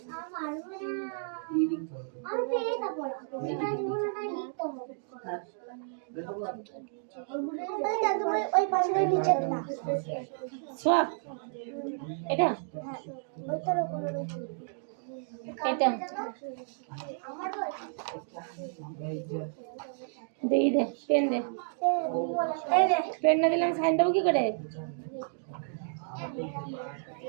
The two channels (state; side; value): silent; left; digital silence